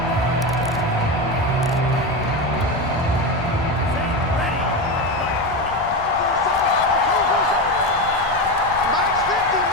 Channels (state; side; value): noise; left; rumble, 17 dB below the sound